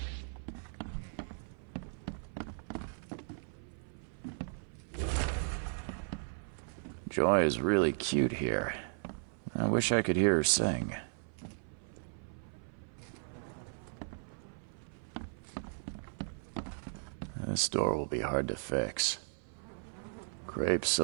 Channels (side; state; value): left; silent; 53 dB below the other